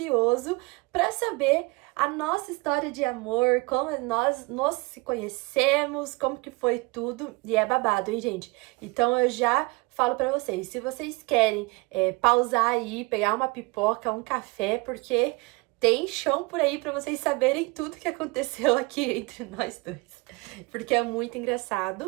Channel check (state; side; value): quieter; left; 26.0 dB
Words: para saber a nossa história de amor, como nós nos se conhecemos, como que foi tudo, e é babado, hein, gente? Então eu já falo pra vocês, se vocês querem pausar aí, pegar uma pipoca, um café, porque tem chão por aí pra vocês saberem tudo que aconteceu aqui entre nós dois, porque é muito